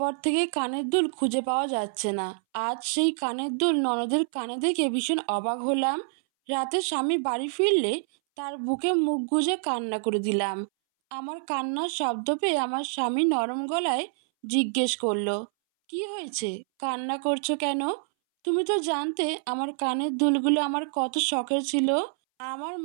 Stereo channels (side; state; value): left; silent; 60 dB below the other